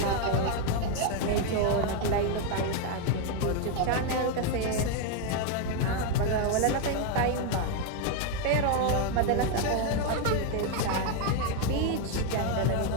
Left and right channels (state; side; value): different; both; correlation 0.01